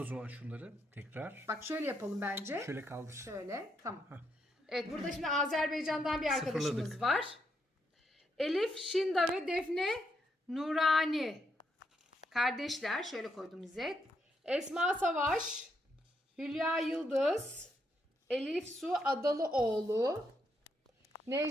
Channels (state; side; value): normal; both; correlation 0.79